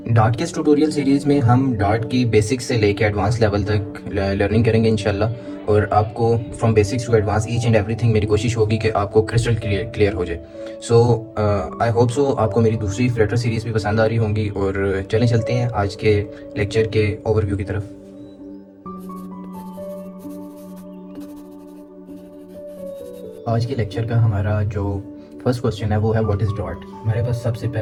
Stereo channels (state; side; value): identical; both; correlation 1.00